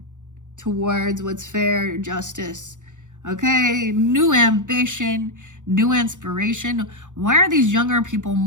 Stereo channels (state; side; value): late; left; 0.86 ms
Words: towards what's fair, justice. Okay, new ambition, new inspiration. Why are these younger people